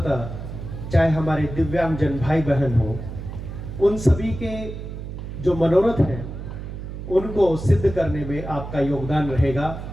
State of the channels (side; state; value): right; noise; hum, 9 dB below the sound